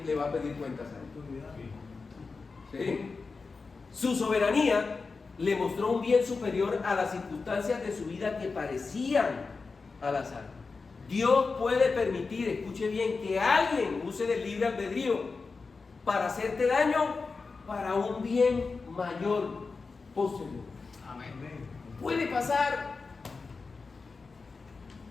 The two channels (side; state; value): right; quieter; 4.4 dB